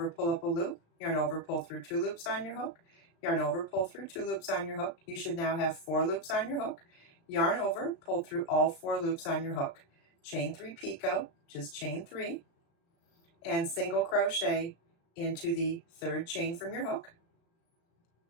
pull up a loop, yarn over, pull through 2 loops on your hook, yarn over, pull through 2 loops on your hook. You should now have 4 loops on your hook. Yarn over, pull through all 4 loops on your hook. Chain 3 picot, just chain 3, and single crochet into the 3rd chain from your hook.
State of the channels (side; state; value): right; late; 36 ms